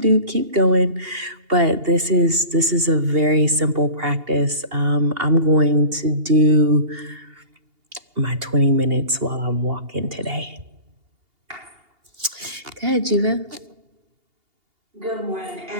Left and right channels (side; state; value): left; late; 2.8 ms